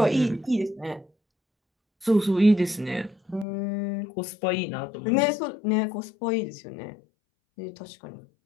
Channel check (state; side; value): drops out; right; at 3.5 s